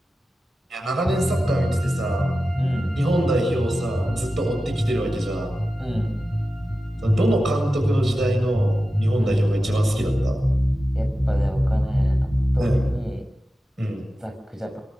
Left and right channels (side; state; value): both; normal; correlation 0.93